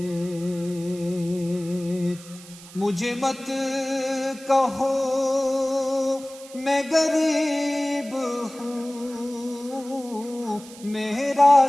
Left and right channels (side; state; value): right; noise; hiss, 19 dB below the sound